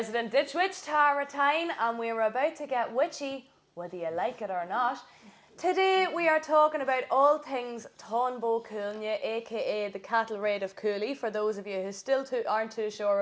ditch witch, Tara Tyne, and we're about to get witchy, whether you like it or not. Today we are talking about all things Tonbo Coolnia, aka the cattle raid of Cooley, for those of you who still aren't too sure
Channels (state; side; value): identical; both; correlation 1.00